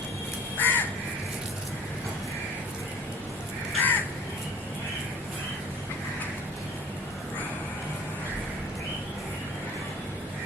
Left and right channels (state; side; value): normal; both; correlation 0.47